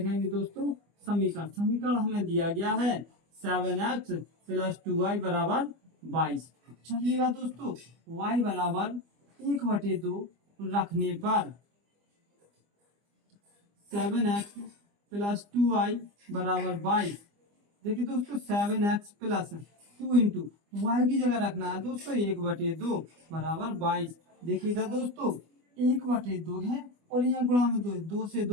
दोस्तों? समीकरण। समीकरण हमें दिया गया है 7x प्लस 2y बराबर 22। चलिएगा दोस्तों, y बराबर 1/2 रखने पर 7x प्लस 2y बराबर 22। देखिए दोस्तों, 7x प्लस 2 इंटू वाई की जगह रखना है दोस्तों 1/2 बराबर 22। देखिएगा दोस्तों, 1/2 है और यहाँ गुणा में 2 है, 2 से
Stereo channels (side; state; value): left; late; 25 ms